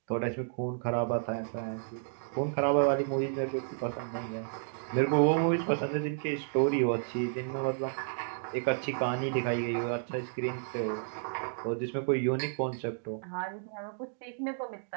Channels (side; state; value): left; silent; digital silence